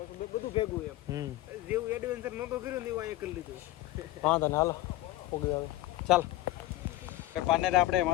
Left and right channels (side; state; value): right; quieter; 16.4 dB